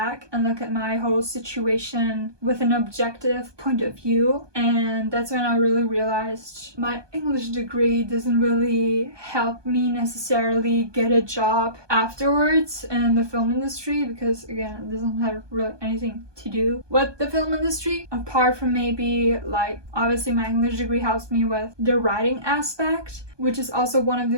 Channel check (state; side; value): late; left; 1.2 ms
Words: and look at my whole situation with an objective point of view, and that's when I really realized my English degree doesn't really help me necessarily get a job afterwards in the film industry, because again, it doesn't have really anything to do with the film industry, apart from maybe like, obviously my English degree helps me with the writing aspect, which is also one of